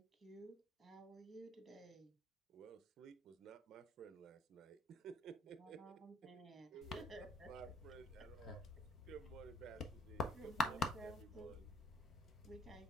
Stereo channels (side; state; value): both; normal; correlation 0.59